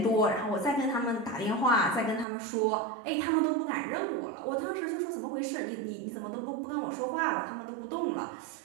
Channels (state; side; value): drops out; left; at 2.2 s